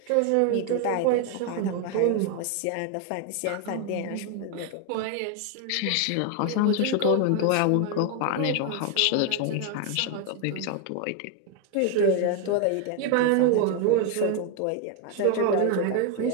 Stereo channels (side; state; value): both; different; correlation 0.01